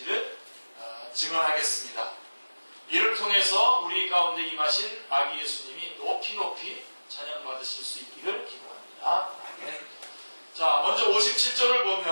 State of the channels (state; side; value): inverted; both; correlation -1.00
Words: 증언하겠습니다. 이를 통해서 우리 가운데 임하신 아기 예수님이 높이 높이 찬양받으실 수 있기를 기도합니다. 아멘. 자, 먼저 57절을